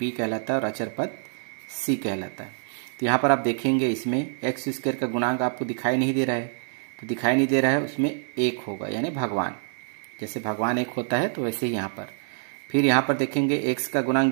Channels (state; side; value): silent; left; digital silence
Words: कहलाता है और अचर पद सी कहलाता है। तो यहाँ पर आप देखेंगे इसमें एक्स स्क्वायर का गुणांक आपको दिखाई नहीं दे रहा है, तो दिखाई नहीं दे रहा है, उसमें एक होगा, यानी भगवान, जैसे भगवान एक होता है तो वैसे ही यहाँ पर। फिर यहाँ पर देखेंगे एक्स का गुणांक